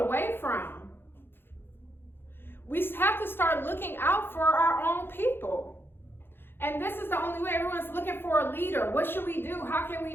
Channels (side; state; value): right; late; 0.10 ms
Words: from. We have to start looking out for our own people. And this is the only way. Everyone's looking for a leader. What should we do? How can